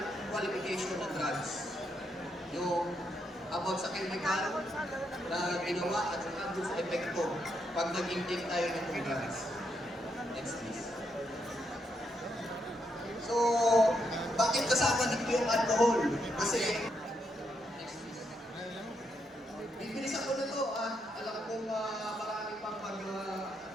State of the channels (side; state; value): both; normal; correlation 0.79